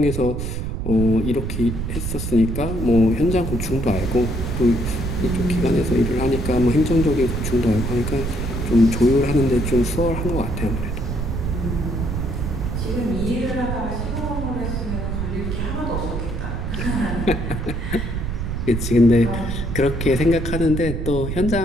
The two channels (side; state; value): right; noise; rumble, 3 dB below the sound